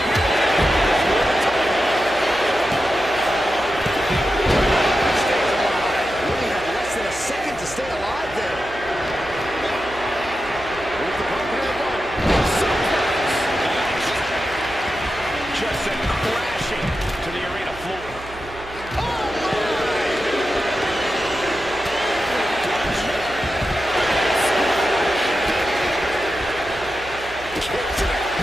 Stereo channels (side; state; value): right; noise; hum, 17 dB below the sound